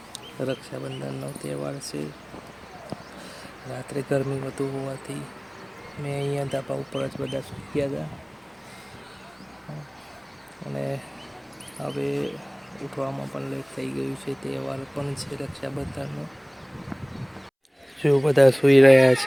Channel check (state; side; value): identical; both; correlation 1.00